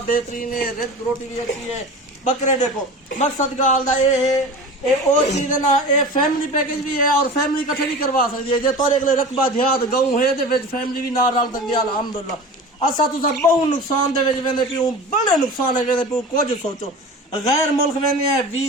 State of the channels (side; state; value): both; normal; correlation 0.34